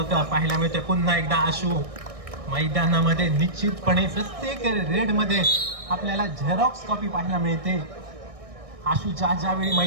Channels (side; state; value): left; late; 1.6 ms